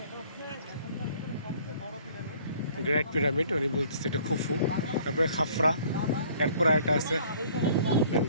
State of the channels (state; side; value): inverted; both; correlation -0.56